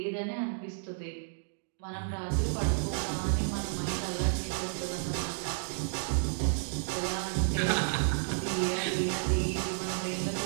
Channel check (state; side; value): silent; left; digital silence